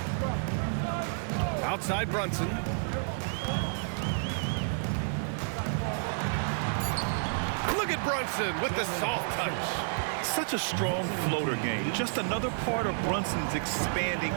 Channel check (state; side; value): silent; left; digital silence